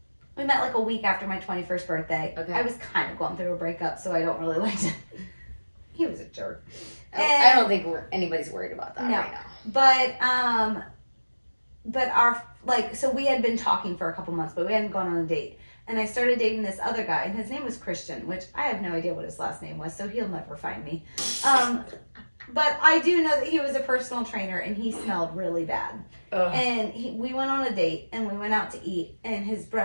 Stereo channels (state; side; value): inverted; both; correlation -1.00